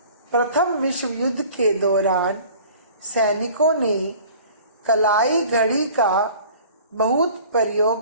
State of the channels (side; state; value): both; inverted; correlation -0.47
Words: प्रथम विश्व युद्ध के दौरान सैनिकों ने कलाई घड़ी का बहुत